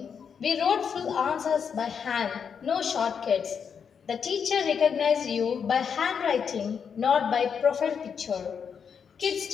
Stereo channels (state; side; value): quieter; right; 6.9 dB